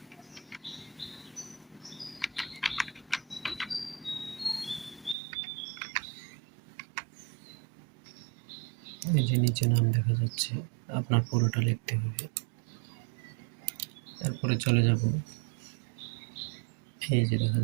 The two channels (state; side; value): drops out; left; at 5.2 s